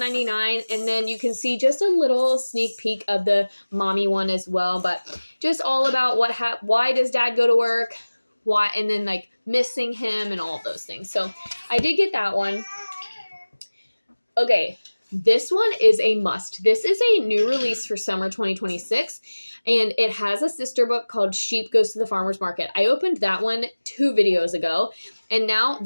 and then you can see just a little sneak peek of the mommy one as well, but just all about why does Dad go to work, why, and then like missing him and all of those things. So I did get that one. Okay, this one is a must. This is a new release for summer 2026. And it has a sister book called Sheep Goes to the Farmer's Market. I opened that one 2 videos ago. And now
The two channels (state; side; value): inverted; both; correlation -1.00